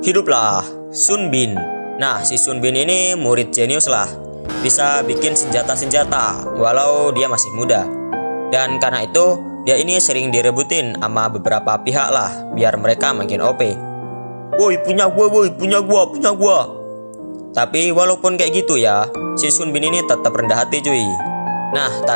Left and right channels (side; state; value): both; inverted; correlation -1.00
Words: hiduplah Sun Bin. Nah, si Sun Bin ini murid jenius lah. Bisa bikin senjata-senjata walau dia masih muda. Dan karena itu, dia ini sering direbutin sama beberapa pihak lah, biar mereka makin OP. Woi, punya gua. Tapi walaupun kayak gitu ya, si Sun Bin ini tetap rendah hati cuy. Nah,